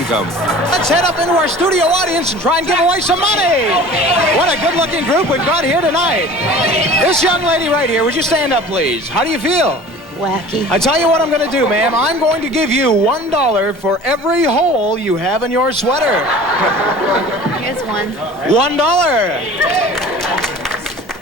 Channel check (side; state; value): both; normal; correlation 0.43